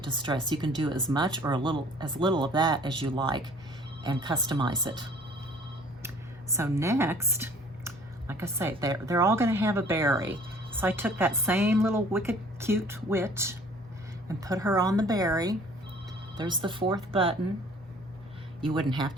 distressed. You can do as much or as little of that as you like and customize it. So next, like I say, they're all going to have a berry. So I took that same little Wicked Cute witch and put her on the berry, There's the 4th button. You wouldn't have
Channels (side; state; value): both; normal; correlation 0.53